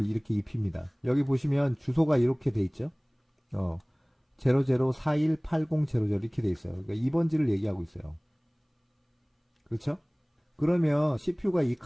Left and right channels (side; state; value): both; identical; correlation 1.00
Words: 이렇게 입힙니다. 여기 보시면 주소가 이렇게 돼 있죠. 00418000 이렇게 돼 있어요. 그러니까 2번지를 얘기하고 있어요. 그렇죠? 그러면 CPU가 이